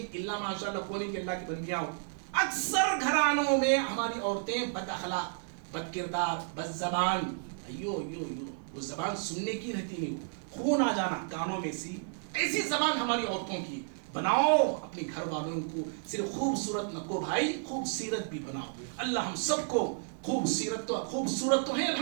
الا ماشاء اللہ کون کہ اللہ کی بندیاں ہو. اکثر گھرانوں میں ہماری عورتیں بد اخلاق, بد کردار, بد زبان, ایو ایو ایو, وہ زبان سننے کی رہتی نہیں, خون آ جانا کانوں میں سی, ایسی زبان ہماری عورتوں کی. بناؤ اپنے گھر والوں کو صرف خوبصورت نہ کو بھائی, خوبصورت بھی بناؤ. اللہ ہم سب کو خوبصورت تو ہے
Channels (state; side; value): silent; left; 56 dB below the other